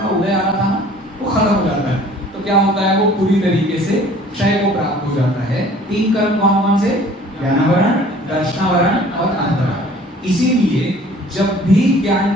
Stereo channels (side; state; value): both; normal; correlation 0.51